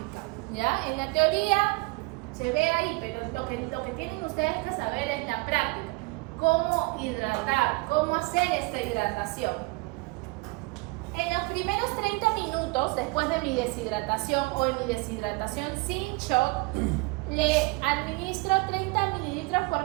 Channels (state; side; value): quieter; left; 25.3 dB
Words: ¿ya? En la teoría se ve ahí, pero lo que tienen ustedes que saber es la práctica. Cómo hidratar, cómo hacer esta hidratación. En los primeros 30 minutos, después de mi deshidratación o en mi deshidratación sin shock, le administro 30 mililitros